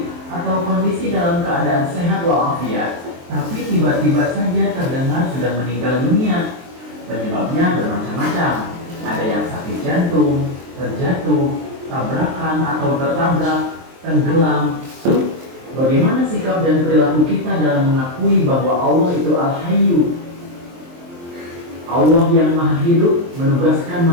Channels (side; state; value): left; late; 23 ms